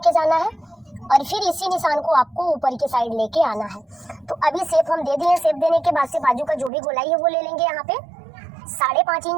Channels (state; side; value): drops out; left; at 6.7 s